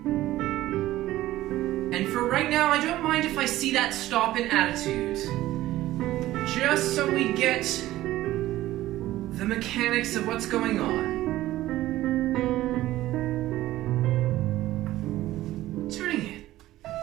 And for right now, I don't mind if I see that stop in attitude. Just so we get the mechanics of what's going on. Turning in.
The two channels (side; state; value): left; quieter; 15.5 dB